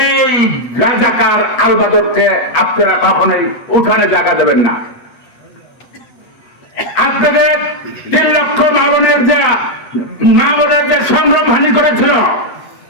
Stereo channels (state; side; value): late; right; 7.9 ms